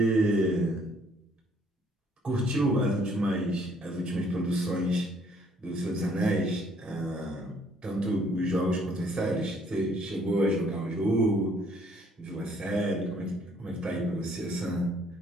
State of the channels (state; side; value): normal; both; correlation 0.63